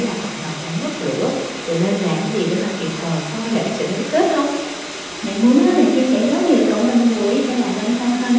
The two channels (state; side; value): identical; both; correlation 1.00